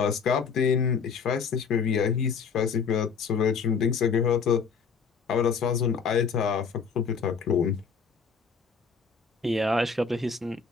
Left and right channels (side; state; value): right; quieter; 5.8 dB